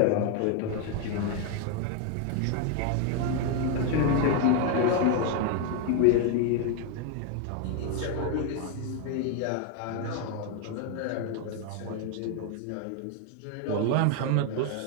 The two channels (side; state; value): both; different; correlation 0.01